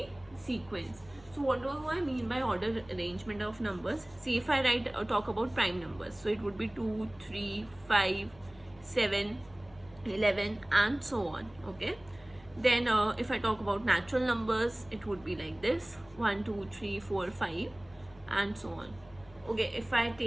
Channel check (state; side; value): noise; left; hum, 25 dB below the sound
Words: sequence. So what do I mean by order arrangement of numbers? See, if I talk about prime numbers, so it would be 2, 3, 5, 7, 11 and so on. Okay, then if I talk about natural numbers, it would be like this: 1, 2, 3, 4, 5 and so on. Okay, if I